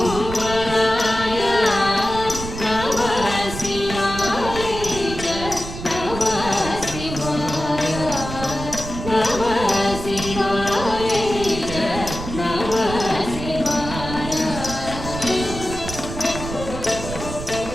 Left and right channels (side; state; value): right; noise; rumble, 8 dB below the sound